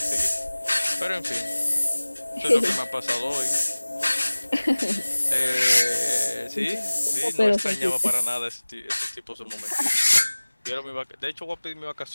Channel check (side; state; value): both; inverted; correlation -1.00